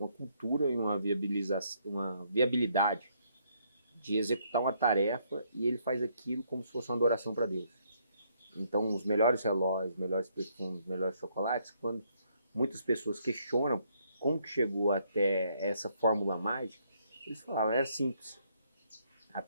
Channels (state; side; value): inverted; both; correlation -0.71